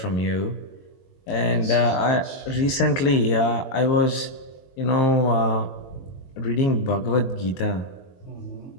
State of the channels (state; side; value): late; right; 23 ms